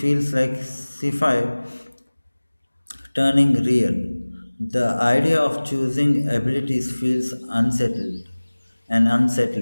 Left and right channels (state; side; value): inverted; both; correlation -1.00